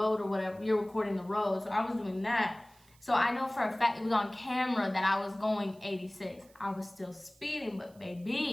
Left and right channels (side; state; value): right; noise; hiss, 29 dB below the sound